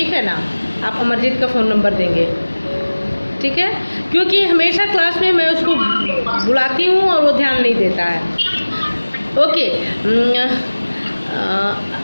है ना? आप अमरजीत का फ़ोन नंबर देंगे, ठीक है? क्योंकि हमेशा क्लास में मैं उसको बुलाती हूँ और वो ध्यान नहीं देता है। ओके,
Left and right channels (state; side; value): inverted; both; correlation -1.00